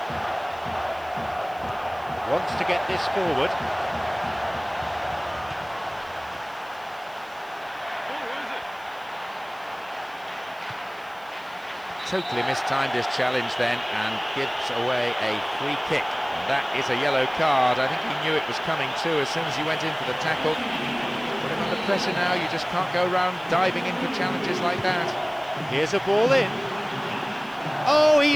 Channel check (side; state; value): right; noise; hiss, 27 dB below the sound